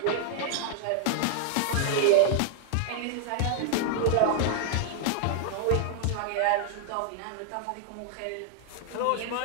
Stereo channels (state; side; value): different; both; correlation 0.00